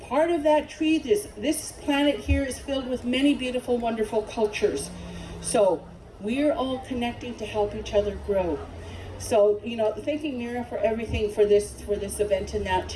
of that tree, this planet here is filled with many beautiful, wonderful cultures. So we're all connecting to help each other grow. So, thanking Mira for everything for this event and that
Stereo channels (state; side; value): identical; both; correlation 1.00